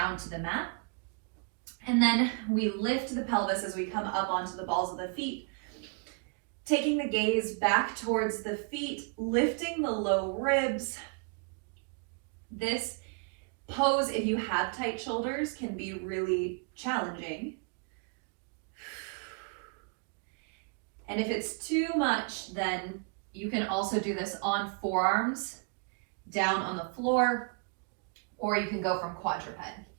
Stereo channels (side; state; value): left; quieter; 37.6 dB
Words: to the mat. And then we lift the pelvis as we come up onto the balls of the feet, taking the gaze back towards the feet, lifting the low ribs. This pose, if you have tight shoulders, can be really challenging. And if it's too much, then you can also do this on forearms, down on the floor, or you can go from quadruped.